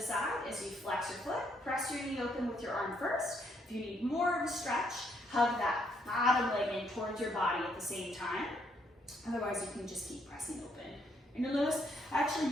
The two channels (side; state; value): both; normal; correlation 0.72